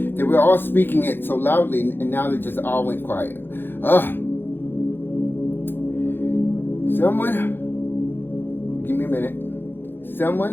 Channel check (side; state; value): right; late; 0.10 ms